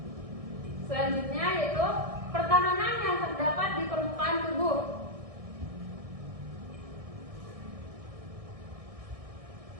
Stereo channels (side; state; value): left; late; 1.6 ms